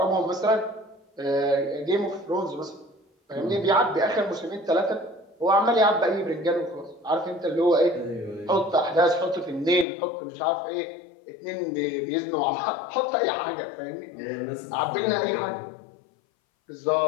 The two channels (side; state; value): right; drops out; at 9.9 s